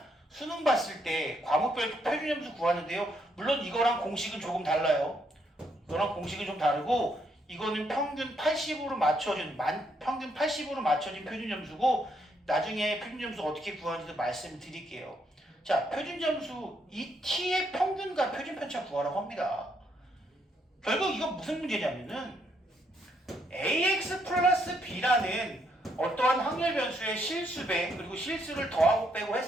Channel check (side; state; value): both; normal; correlation 0.74